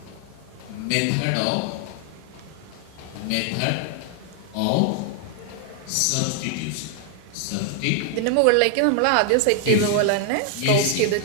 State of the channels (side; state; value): both; different; correlation 0.00